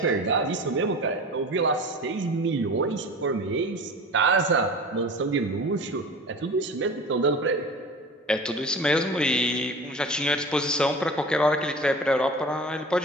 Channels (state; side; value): normal; both; correlation 0.37